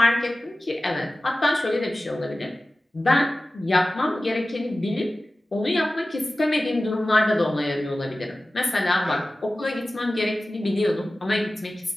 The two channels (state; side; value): normal; both; correlation 0.96